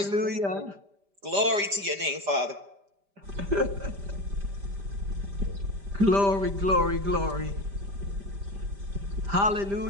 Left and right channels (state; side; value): late; left; 5.0 ms